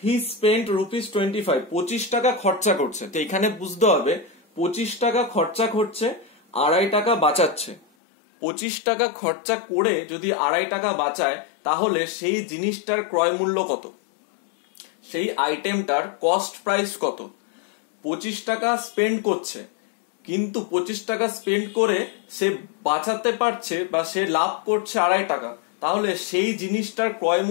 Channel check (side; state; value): right; drops out; at 7.8 s